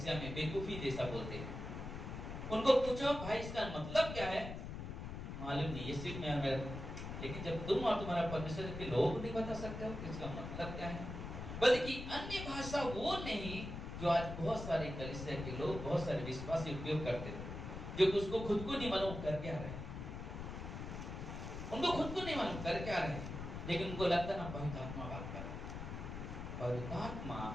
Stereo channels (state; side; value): noise; left; rumble, 7 dB below the sound